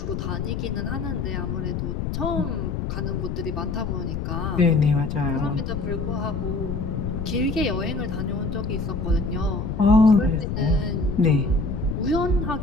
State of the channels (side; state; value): left; noise; rumble, 3 dB below the sound